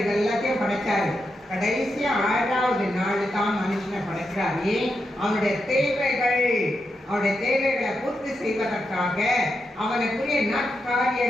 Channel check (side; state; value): both; normal; correlation 0.85